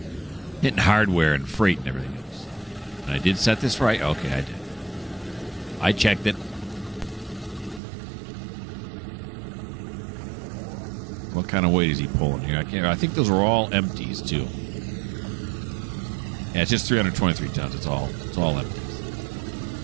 Hinton hardware and freight and everything else. And I did set this right. Okay, I did. I checked it. What kind of weight is he pulling here? I think those are all empties too. Yeah, it's just 323 tons. It's all empties.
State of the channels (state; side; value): drops out; left; at 7.8 s